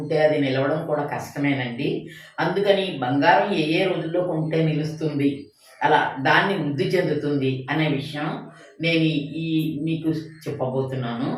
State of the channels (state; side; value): identical; both; correlation 1.00